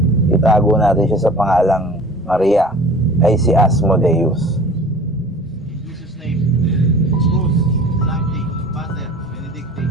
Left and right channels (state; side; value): normal; both; correlation 0.44